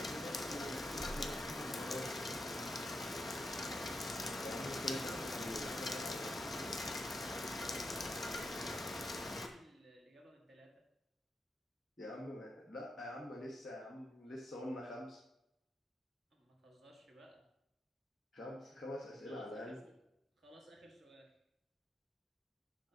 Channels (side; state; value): both; normal; correlation 0.84